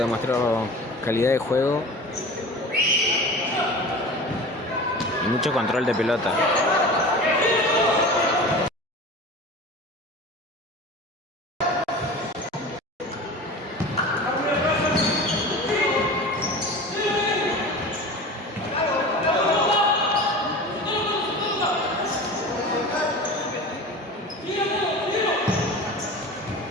calidad de juego y mucho control de pelota.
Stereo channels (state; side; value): normal; both; correlation 0.35